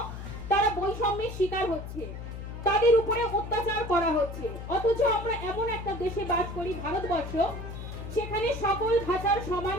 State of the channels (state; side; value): noise; left; hum, 9 dB below the sound